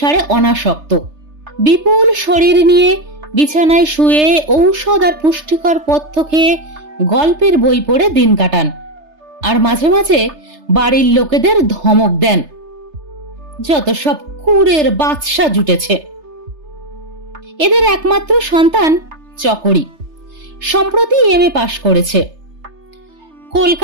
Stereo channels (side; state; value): left; late; 3.3 ms